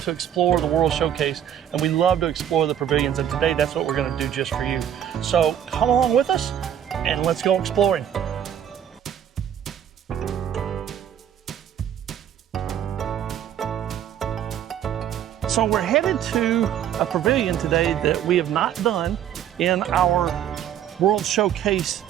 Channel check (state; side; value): quieter; left; 10.0 dB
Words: to explore the World Showcase and we love to explore the pavilions, and today that's what we're going to do just for you. So come along with us and let's go exploring. So we're headed to a pavilion today that we have not done in our World Showcase